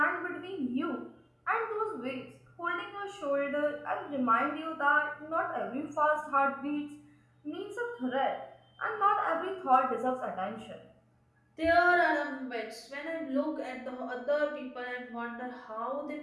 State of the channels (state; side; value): identical; both; correlation 1.00